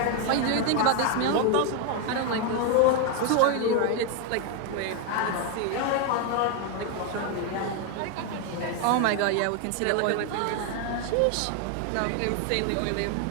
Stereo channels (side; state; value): both; different; correlation 0.01